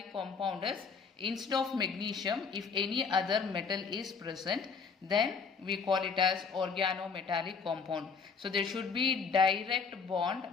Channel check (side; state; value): right; quieter; 5.5 dB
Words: compound is instead of magnesium, if any other metal is present, then we call it as organometallic compound. So there should be direct